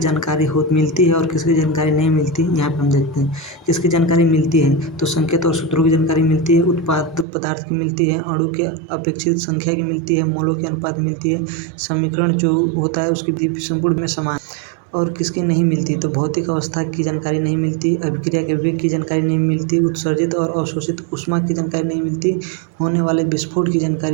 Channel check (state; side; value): drops out; left; at 7.2 s